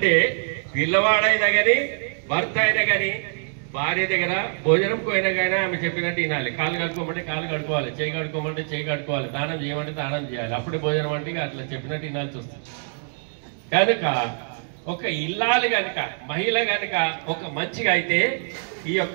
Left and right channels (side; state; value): left; silent; 61 dB below the other